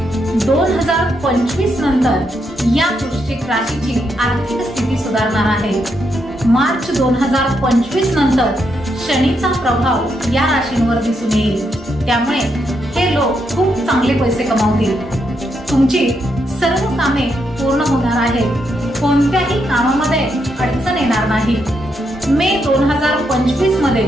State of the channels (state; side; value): normal; both; correlation 0.80